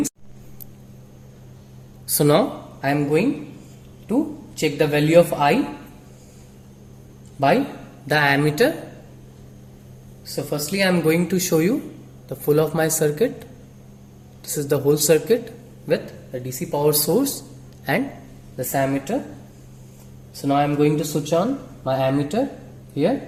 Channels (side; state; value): both; identical; correlation 1.00